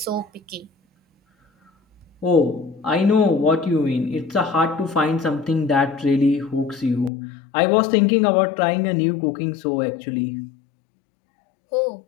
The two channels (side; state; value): right; drops out; at 7.1 s